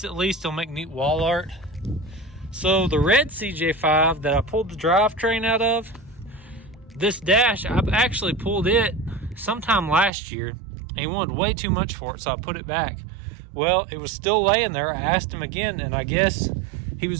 at least it'll make neat wall art. So the red CJ5 that I pulled the drivetrain out of, this dash, I've actually pulled it sometime last year, and he wanted way too much for it, so I put it back. Well, it was still laying there. I asked him again, and I guess he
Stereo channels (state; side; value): drops out; left; at 10.1 s